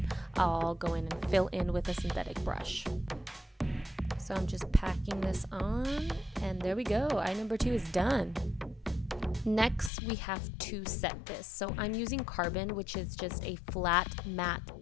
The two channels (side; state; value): right; drops out; at 9.9 s